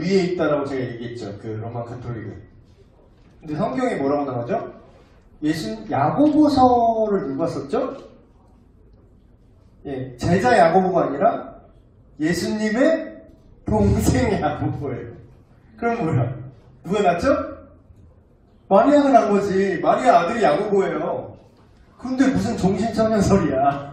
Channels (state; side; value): identical; both; correlation 1.00